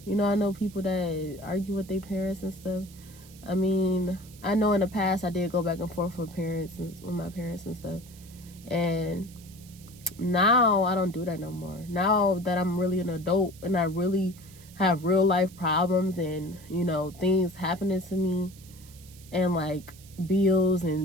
I know people that argue with their parents and stuff. I mean, I know in the past I did go back and forth with my parents and stuff. And now I don't do that no more. Now that I'm really an adult and I really have real life problems and, things happening to me, and like bills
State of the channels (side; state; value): right; noise; hiss, 22 dB below the sound